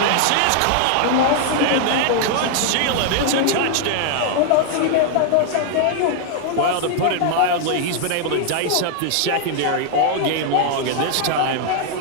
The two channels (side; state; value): both; different; correlation 0.00